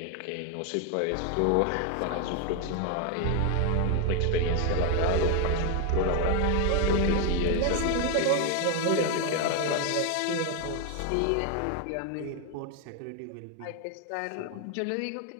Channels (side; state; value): both; different; correlation 0.01